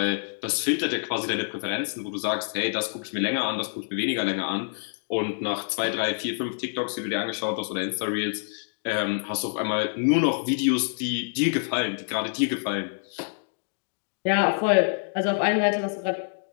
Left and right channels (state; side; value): silent; right; 60 dB below the other